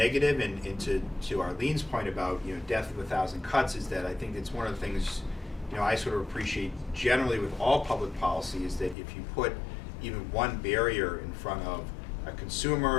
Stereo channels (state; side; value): drops out; right; at 9.0 s